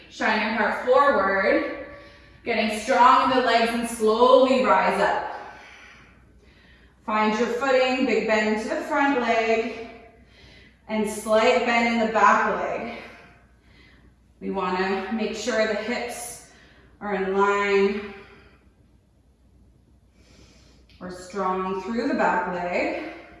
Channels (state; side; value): identical; both; correlation 1.00